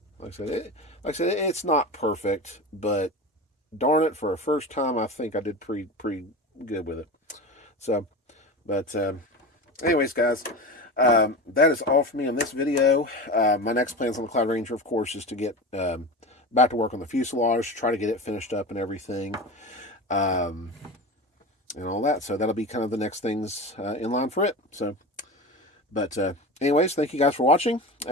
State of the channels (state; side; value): normal; both; correlation 0.28